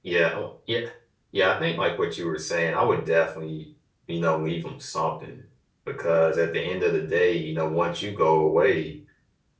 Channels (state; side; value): identical; both; correlation 1.00